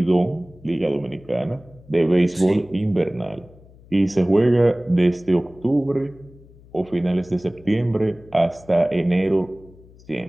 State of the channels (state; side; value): noise; left; hum, 24 dB below the sound